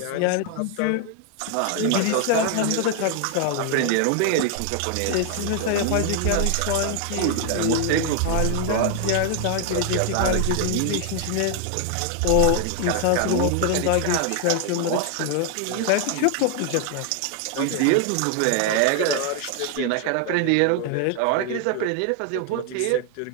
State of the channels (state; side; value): different; both; correlation 0.00